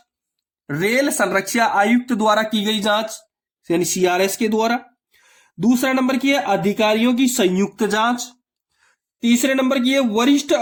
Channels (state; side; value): identical; both; correlation 1.00